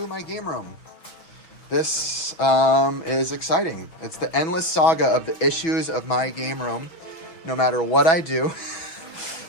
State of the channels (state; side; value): late; right; 6.1 ms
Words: my game room. This is exciting. It's the endless saga of the issues of my game room. No matter what I do,